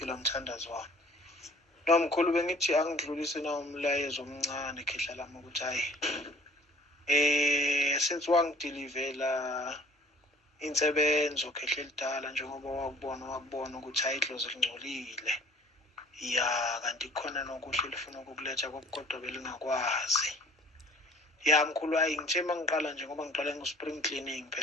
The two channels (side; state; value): both; normal; correlation 0.52